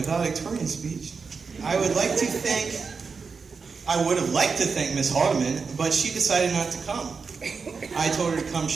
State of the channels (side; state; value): left; quieter; 5.1 dB